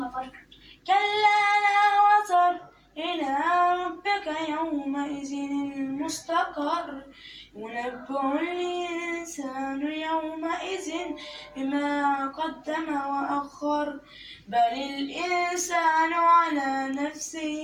كلا لا وزر إلى ربك يومئذ المستقر ينبأ الإنسان يومئذ بما قدم وأخر بل الإنسان على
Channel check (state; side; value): identical; both; correlation 1.00